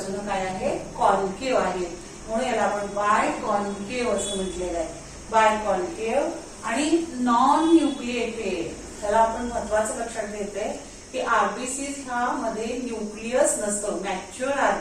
काय आहे? कॉन्केव आहेत. म्हणून याला आपण बाय कॉन्केव असं म्हटलेलं आहे. बाय कॉन्केव आणि नॉन न्यूक्लिएटेड. त्याला आपण महत्वाचं लक्षात घेतोय की आरबीसीज ह्या मध्ये न्यूक्लियस नसतं. Mature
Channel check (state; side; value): identical; both; correlation 1.00